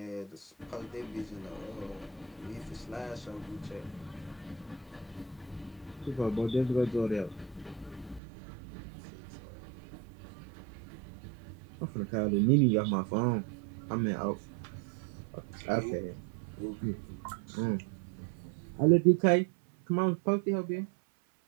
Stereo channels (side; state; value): left; drops out; at 8.2 s